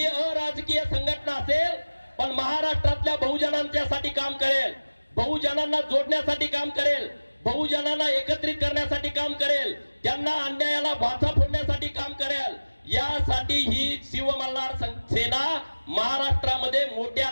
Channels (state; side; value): inverted; both; correlation -1.00